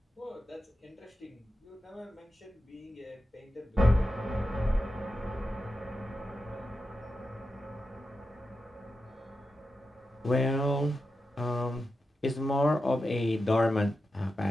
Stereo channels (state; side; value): normal; both; correlation 0.90